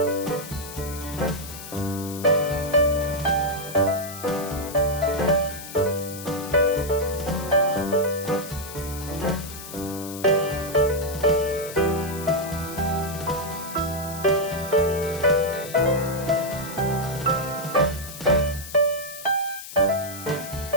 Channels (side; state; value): left; noise; hiss, 12 dB below the sound